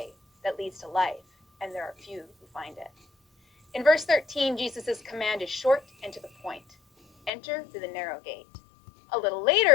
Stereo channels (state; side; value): drops out; right; at 7.3 s